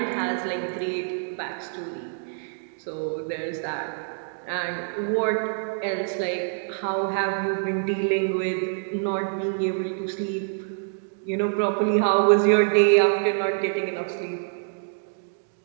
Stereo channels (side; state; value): left; silent; digital silence